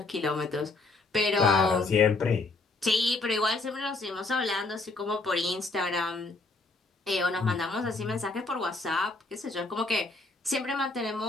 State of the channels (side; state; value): right; quieter; 3.4 dB